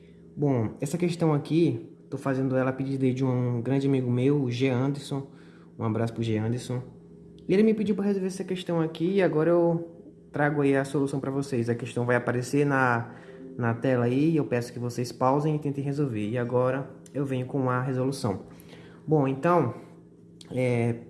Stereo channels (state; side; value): identical; both; correlation 1.00